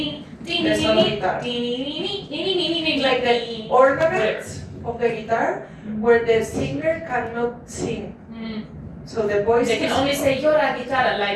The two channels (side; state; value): both; identical; correlation 1.00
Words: like the ornaments of the guitar where the singer cannot sing. So the voice they can only say llora guitarra,